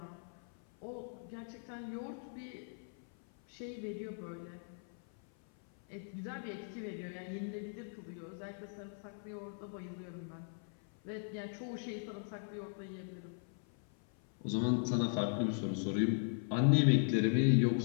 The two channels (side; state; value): right; silent; 52 dB below the other